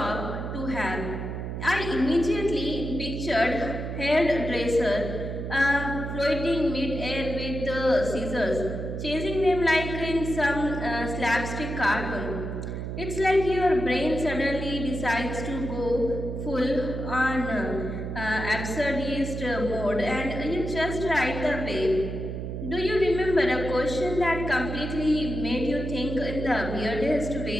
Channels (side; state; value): right; noise; hum, 5 dB below the sound